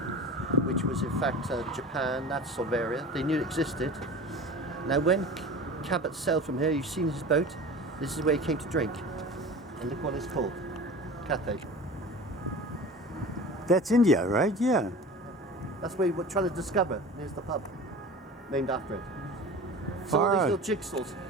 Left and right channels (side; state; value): both; normal; correlation 0.36